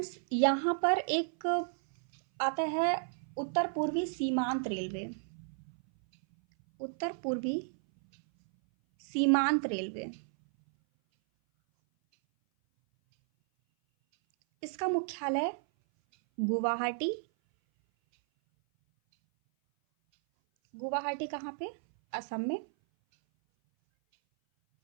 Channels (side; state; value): left; silent; 56 dB below the other